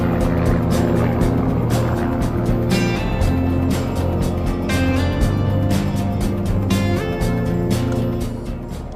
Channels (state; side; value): identical; both; correlation 1.00